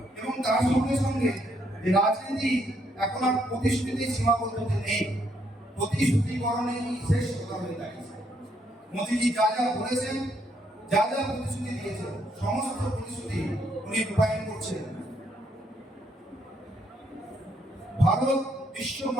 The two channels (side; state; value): both; normal; correlation 0.73